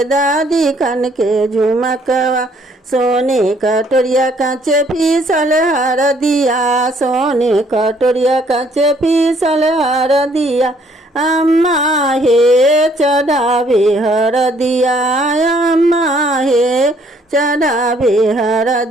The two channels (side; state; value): both; normal; correlation 0.64